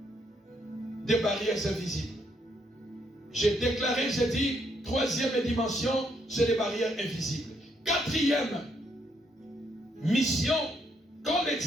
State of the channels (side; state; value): both; normal; correlation 0.74